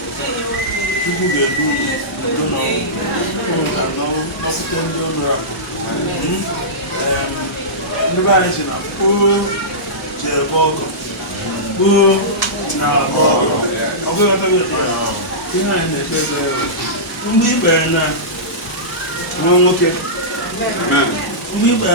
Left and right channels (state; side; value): normal; both; correlation -0.17